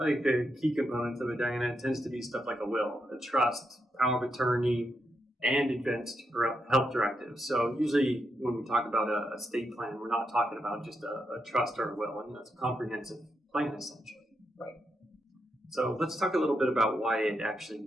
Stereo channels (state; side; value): normal; both; correlation 0.83